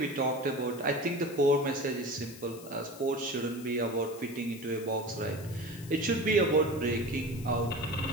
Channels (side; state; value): left; noise; hiss, 18 dB below the sound